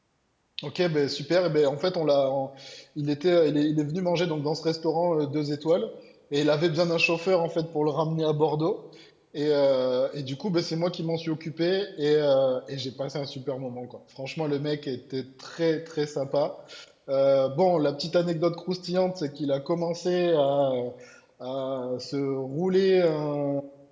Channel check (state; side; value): identical; both; correlation 1.00